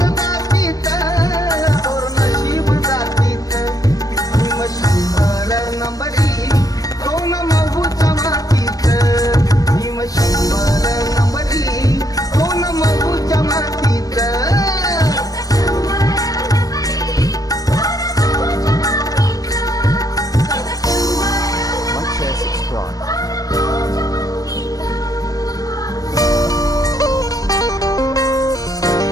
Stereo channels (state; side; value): late; right; 0.18 ms